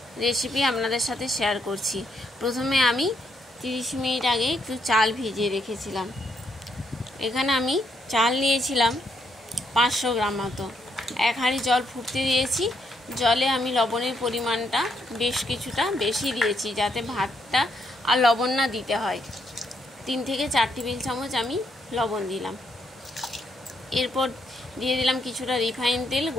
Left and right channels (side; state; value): both; normal; correlation 0.75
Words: রেসিপি আপনাদের সাথে শেয়ার করছি। প্রথমে আমি 30 মিনিট আগে একটু চাল ভিজিয়ে রেখেছিলাম। এখানে আমি চাল নিয়েছিলাম 500 গ্রাম মতো। 1 হাঁড়ি জল ফুটতে দিয়েছি। জলে আমি লবণের পরিমাণটা বেশ কিছুটা বেশি দিয়েছি, যাতে ভাতটা আর লবণ না দিতে হয়। 3 থেকে 4 টেবিল চামচ আমি লবণ দিলাম। এরপর দিয়ে দিলাম কিছুটা রিফাইন তেল,